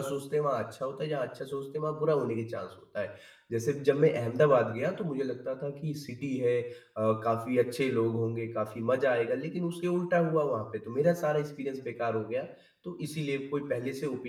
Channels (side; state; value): both; identical; correlation 1.00